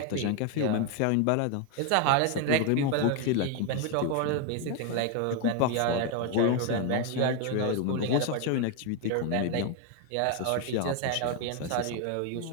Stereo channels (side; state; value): both; different; correlation 0.01